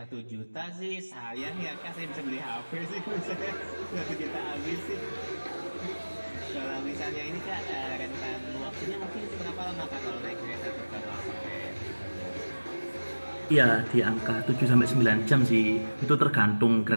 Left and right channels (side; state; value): both; inverted; correlation -1.00